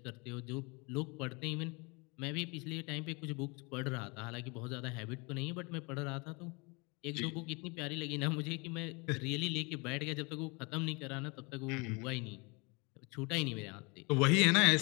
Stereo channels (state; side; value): quieter; right; 29.2 dB